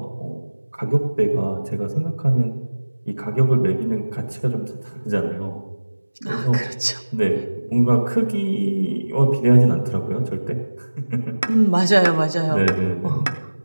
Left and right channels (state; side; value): inverted; both; correlation -1.00